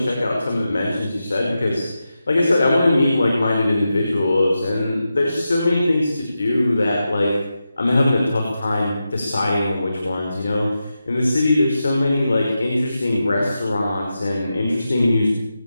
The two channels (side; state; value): both; inverted; correlation -0.90